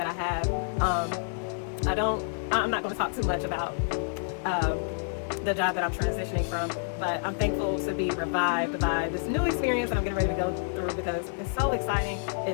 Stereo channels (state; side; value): silent; right; digital silence